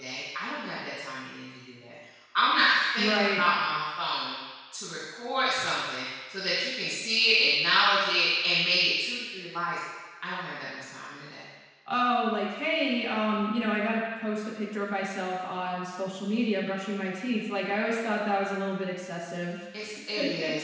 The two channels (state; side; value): identical; both; correlation 1.00